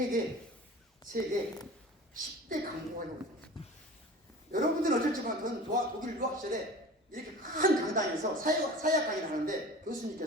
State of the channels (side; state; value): both; normal; correlation 0.38